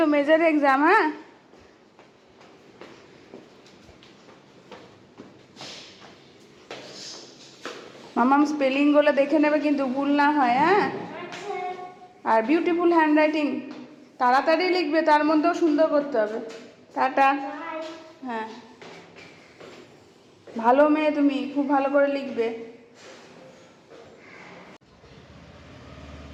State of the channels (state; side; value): identical; both; correlation 1.00